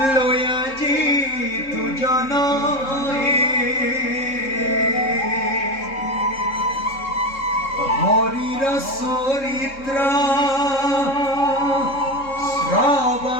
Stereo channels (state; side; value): late; right; 3.7 ms